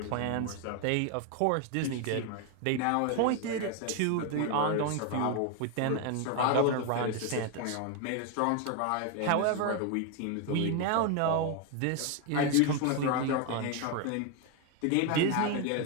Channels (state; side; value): different; both; correlation 0.01